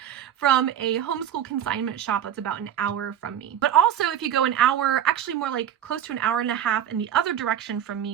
from a homeschool consignment shop that's about an hour from me. But also, if you go an hour, actually more like close to an hour and a half in the other direction from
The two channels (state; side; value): quieter; left; 10.1 dB